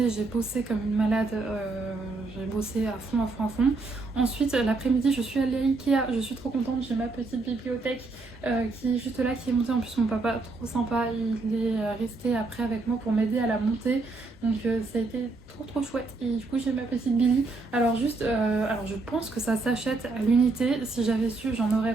j'ai bossé comme une malade, j'ai bossé à fond. Ensuite l'après-midi je suis allée à Ikea, je suis trop contente, j'ai ma petite bibliothèque qui est juste là, qui est montée, en plus mon papa trop sympa, il est resté après avec moi pour m'aider à la monter, donc ça a été trop chouette. Et du coup j'ai ma petite Billy. Alors juste, alors je pense que ça s'achète à l'unité, si j'avais su j'en aurais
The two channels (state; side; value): quieter; left; 3.5 dB